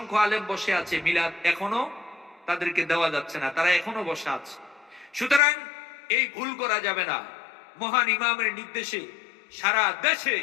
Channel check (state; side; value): drops out; right; at 5.4 s